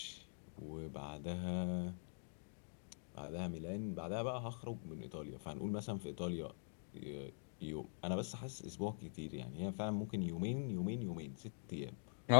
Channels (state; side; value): silent; right; digital silence